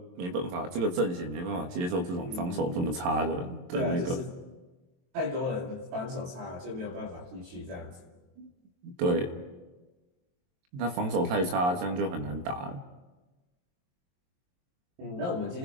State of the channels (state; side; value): late; left; 22 ms